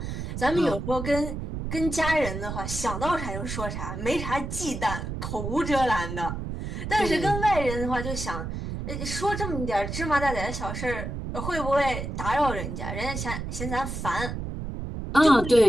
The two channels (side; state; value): right; noise; rumble, 5 dB below the sound